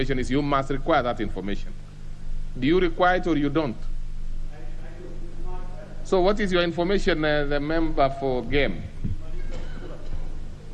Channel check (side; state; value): both; identical; correlation 1.00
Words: is you must require that information. Do you require it or you don't? So what is your information, the member for Game?